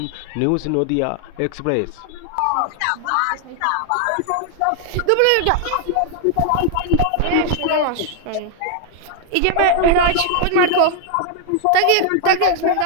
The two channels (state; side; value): different; both; correlation 0.00